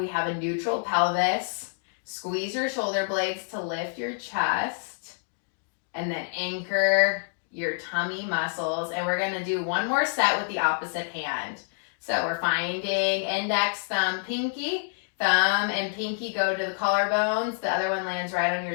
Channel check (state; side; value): silent; right; digital silence